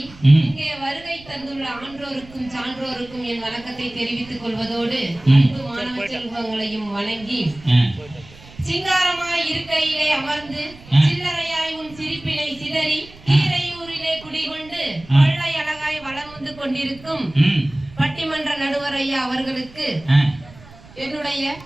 இங்கே வருகை தந்துள்ள ஆன்றோருக்கும் சான்றோருக்கும் என் வணக்கத்தை தெரிவித்துக் கொள்வதோடு அன்பு மாணவ செல்வங்களையும் வணங்கி சிங்காரமாய் இருக்கையிலே அமர்ந்து சில்லறையாய் உன் சிரிப்பினை சிதறி கீரையூரிலே குடிகொண்டு கொள்ளை அழகாய் வளம் வந்து கொண்டிருக்கும் பட்டிமன்ற நடுவர் ஐயா அவர்களுக்கு என்னுடைய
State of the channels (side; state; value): right; noise; rumble, 21 dB below the sound